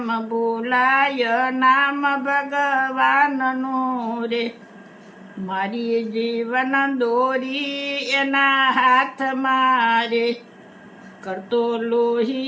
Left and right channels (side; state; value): both; identical; correlation 1.00